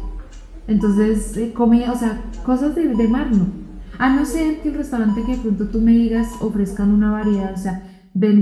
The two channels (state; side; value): identical; both; correlation 1.00